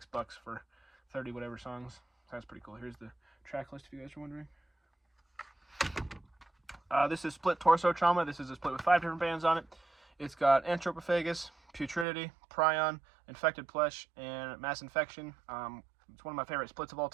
for 30 whatever songs. So that's pretty cool. Here's the track list if you guys are wondering. This is Split Torso Trauma. This is a split with 5 different bands on it. It's got Anthropophagus, Putridity, Prion, Infected Flesh, and Mass Infection. It's one of my favorite splits of all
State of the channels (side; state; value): left; drops out; at 12.1 s